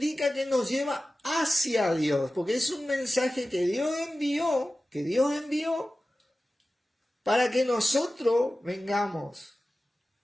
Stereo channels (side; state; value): both; normal; correlation 0.95